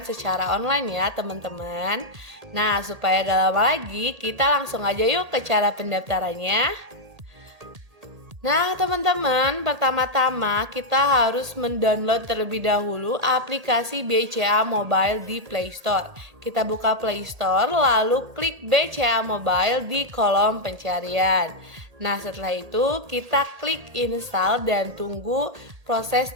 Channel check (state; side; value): late; left; 1.8 ms